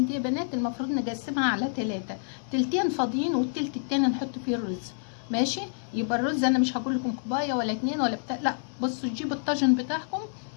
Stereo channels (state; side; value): silent; right; 59 dB below the other